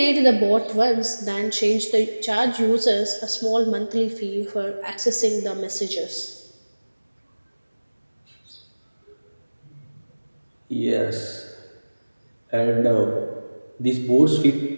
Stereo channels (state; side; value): inverted; both; correlation -1.00